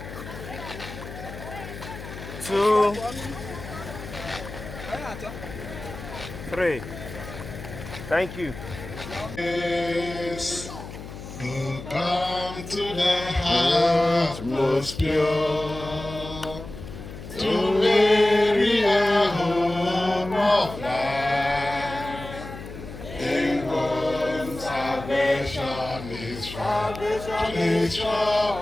2, 3. Thank you. Yes, who come to the heart most pure, to weary a home of life, in whom salvation is found.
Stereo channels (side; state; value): left; noise; hum, 12 dB below the sound